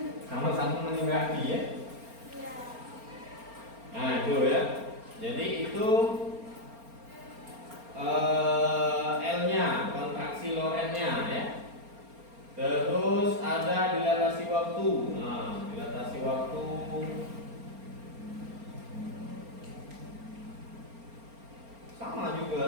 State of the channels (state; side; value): late; left; 4.3 ms